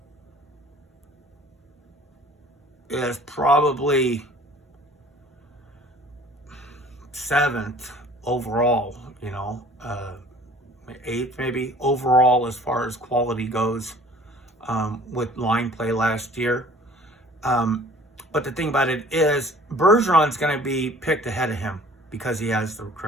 is probably 7th overall, 8th maybe overall as far as quality goes, with line play last year. But the thing about it is, Bergeron's going to be picked ahead of him because he has the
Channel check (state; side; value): normal; both; correlation 0.51